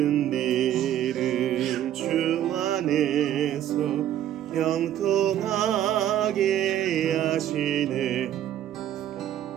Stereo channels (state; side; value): quieter; left; 11.4 dB